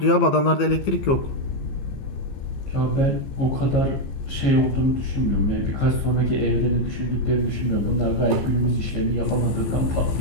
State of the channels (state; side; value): late; right; 15 ms